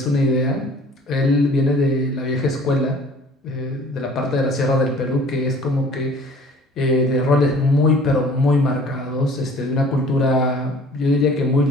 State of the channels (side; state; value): both; normal; correlation 0.51